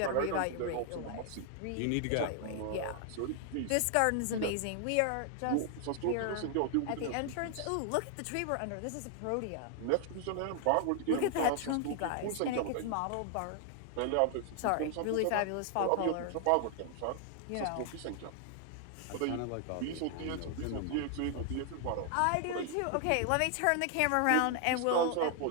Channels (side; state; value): both; different; correlation 0.00